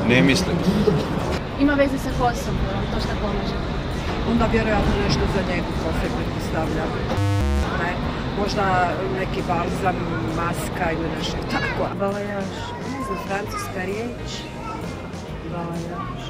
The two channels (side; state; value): both; identical; correlation 1.00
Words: Ne mislim. Ima veze sa kosom, to šta pomaže. Onda vjerojatno nešto za njegu kose pretpostavljam. Ne, možda neki balzam, maska ili nešto tako. Balajaž, ne znam, francuska riječ. Balajaž,